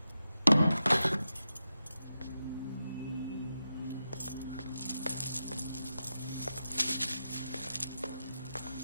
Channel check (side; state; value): both; inverted; correlation -0.89